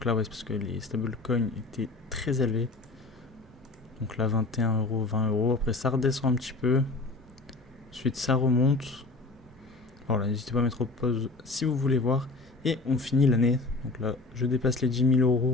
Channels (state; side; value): quieter; right; 3.3 dB